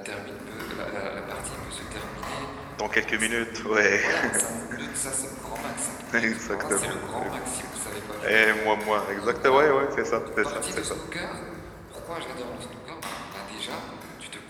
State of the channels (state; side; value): identical; both; correlation 1.00